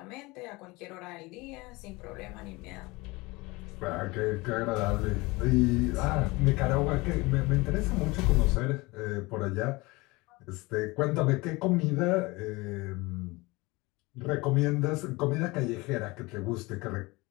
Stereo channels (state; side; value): quieter; right; 23.3 dB